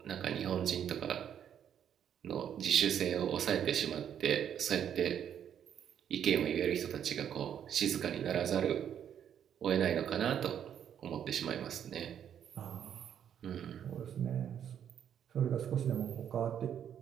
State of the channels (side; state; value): left; quieter; 9.2 dB